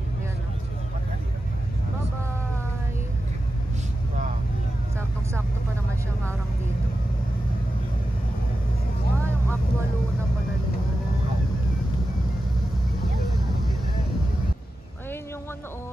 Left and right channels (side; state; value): both; normal; correlation 0.91